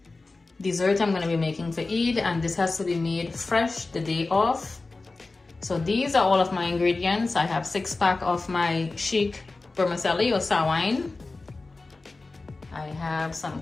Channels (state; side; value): quieter; right; 3.5 dB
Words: dessert I'm going to be making for Eid, and this has to be made fresh the day of. So these are all of my ingredients. I have 6-pack of my chic vermicelli or sawine. I have some